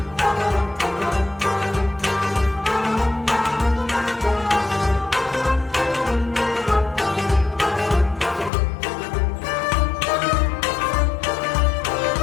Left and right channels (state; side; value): drops out; right; at 8.5 s